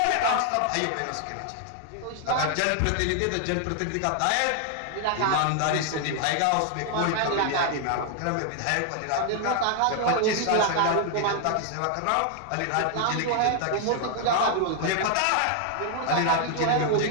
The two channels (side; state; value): both; different; correlation 0.00